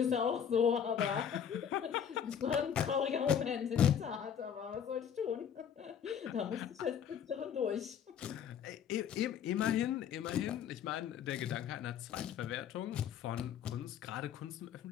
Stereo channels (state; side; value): quieter; right; 8.4 dB